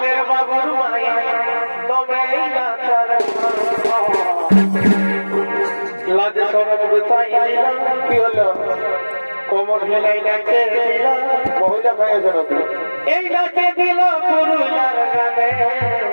বাবুর মায়ে তবে লাজ সরব গুতাই দিলাম কি হলো কোমর হেলাই নাচে দিলাম মহিলা খাইয়েছে নাকি এই নাচে দিল পুরুলার গানে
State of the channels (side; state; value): both; inverted; correlation -1.00